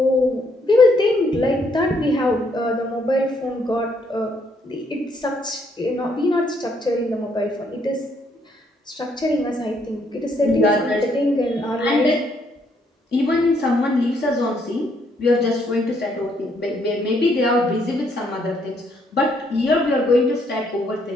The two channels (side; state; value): both; normal; correlation 0.71